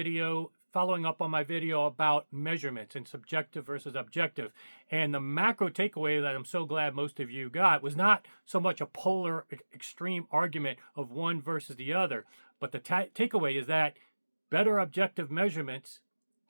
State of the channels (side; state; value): both; inverted; correlation -1.00